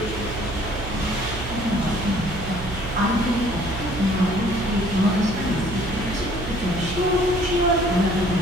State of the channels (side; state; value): right; noise; hum, 9 dB below the sound